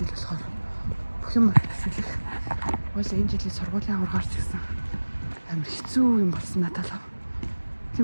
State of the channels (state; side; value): inverted; both; correlation -1.00